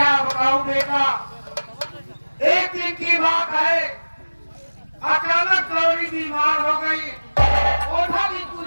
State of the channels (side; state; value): both; inverted; correlation -1.00